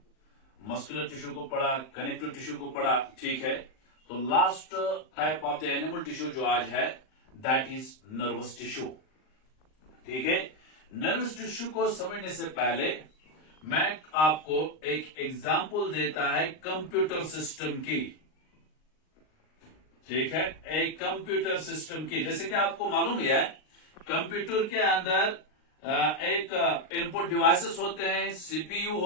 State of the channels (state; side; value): late; right; 39 ms